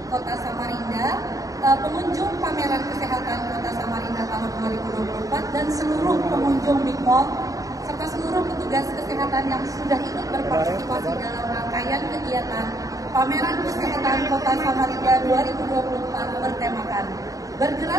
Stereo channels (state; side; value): late; left; 0.17 ms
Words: Kota Samarinda, pengunjung pameran kesehatan Kota Samarinda tahun 2024 dan seluruh pengunjung Big Mall serta seluruh petugas kesehatan yang sudah ikut berpartisipasi dalam rangkaian kegiatan Pameran Kesehatan Kota Samarinda 2024 bertemakan